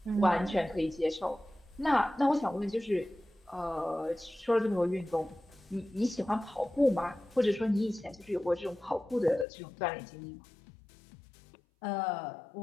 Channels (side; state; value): right; drops out; at 9.5 s